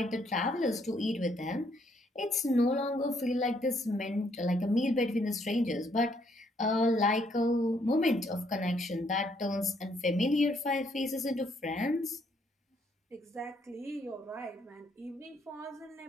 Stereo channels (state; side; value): normal; both; correlation 0.70